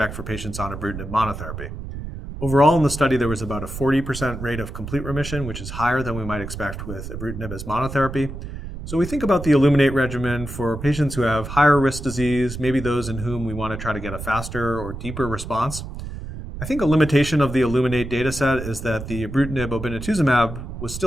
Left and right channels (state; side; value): noise; right; rumble, 9 dB below the sound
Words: for patients on ibrutinib monotherapy. Overall in the study, there was about a 40% rate of complete remission, which is higher than we might expect with ibrutinib as monotherapy. So we think about the iLLUMINATE regimen for patients who have higher risk disease, maybe those in whom we want to try to get a faster or deeper response. I think a limitation of the iLLUMINATE dataset is that the ibrutinib obinutuzumab was